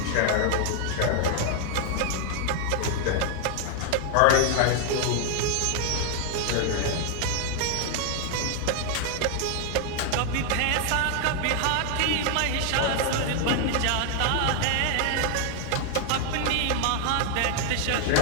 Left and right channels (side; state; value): both; different; correlation 0.00